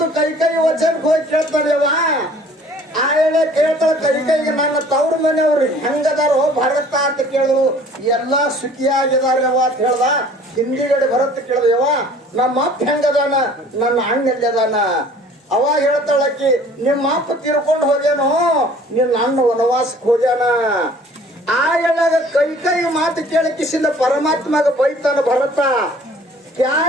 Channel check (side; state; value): both; normal; correlation 0.52